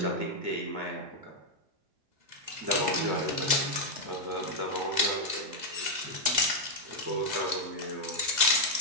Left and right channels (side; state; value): left; late; 2.0 ms